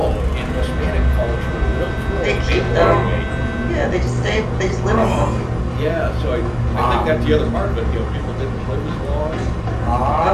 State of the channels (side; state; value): both; identical; correlation 1.00